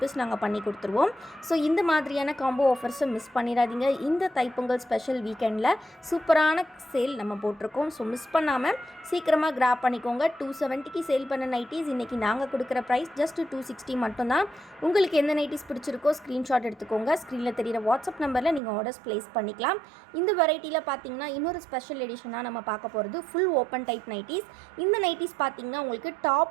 நாங்கள் பண்ணி கொடுத்துருவோம். ஸோ இந்த மாதிரியான காம்போ ஆஃபர்ஸை மிஸ் பண்ணிடாதீங்க. இந்த தைப்பொங்கல் ஸ்பெஷல் வீக்கெண்டில் சூப்பரான சேல் நம்ம போட்டிருக்கோம். ஸோ மிஸ் பண்ணாமல் சீக்கிரமாக கிராப் பண்ணிக்கோங்க. 270க்கு சேல் பண்ண நைட்டிஸ் இன்றைக்கி நாங்கள் கொடுக்குற ப்ரைஸ் ஜஸ்ட் 260 மட்டும்தான். உங்களுக்கு எந்த நைட்டிஸ் பிடிச்சிருக்கோ ஸ்க்ரீன்ஷாட் எடுத்துக்கோங்க. ஸ்க்ரீனில் தெரிகிற வாட்ஸ்அப் நம்பரில் நீங்கள் ஆர்டர்ஸ் ப்ளேஸ் பண்ணிக்கலாம். இந்த வெரைட்டியில் பார்த்தீங்கன்னா இன்னொரு ஸ்பெஷல் எடிஷனாக நம்ம பார்க்க போகிறது ஃபுல் ஓப்பன் டைப் நைட்டிஸ். இந்த நைட்டிஸ் பார்த்தீங்கன்னா உங்களுக்கு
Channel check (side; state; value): left; drops out; at 18.6 s